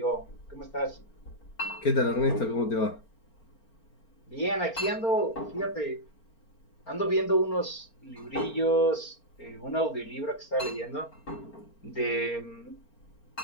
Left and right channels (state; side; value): late; right; 4.4 ms